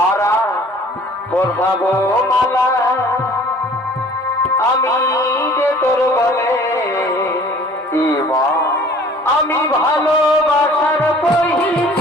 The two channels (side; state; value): both; normal; correlation 0.51